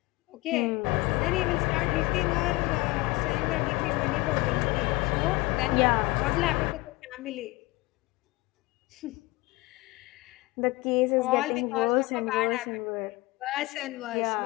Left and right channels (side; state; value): right; quieter; 21.9 dB